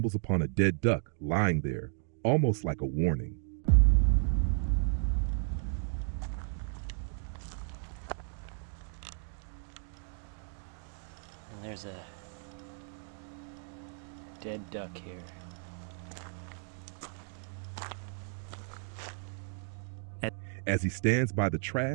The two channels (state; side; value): silent; left; 55 dB below the other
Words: upon a dead duck lying there, almost like a warning. And there's a dead duck here. As he stands by the